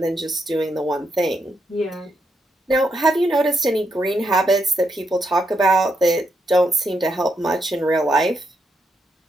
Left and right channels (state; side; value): normal; both; correlation 0.80